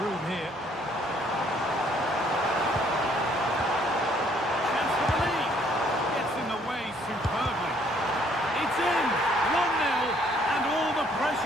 here. Chance for the lead. Gets in the way superbly. It's in. 1-0, and all the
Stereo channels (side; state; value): both; normal; correlation 0.64